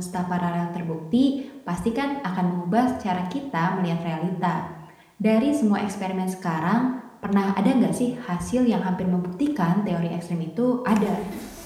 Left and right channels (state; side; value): identical; both; correlation 1.00